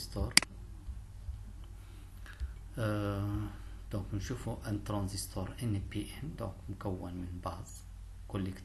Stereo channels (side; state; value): both; identical; correlation 1.00